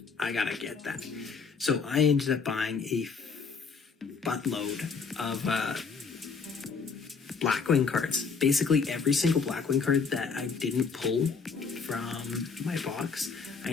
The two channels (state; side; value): quieter; right; 5.2 dB